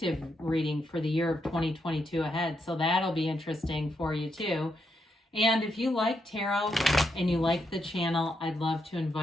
reading for the year of 2022 ahead. So that'll be interesting for you too. And if you like tarot and you like the channel, I'd love to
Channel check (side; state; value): both; normal; correlation 0.81